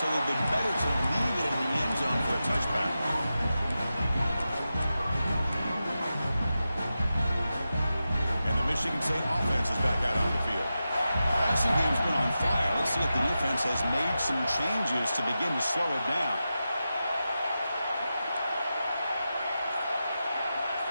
it would have been better to leave it in the end zone for a touchback. And the Michigan State offense is back out on the field. Passing game's been on fire. Let's see if the defense has made some changes to begin to slow it down.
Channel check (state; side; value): inverted; both; correlation -0.91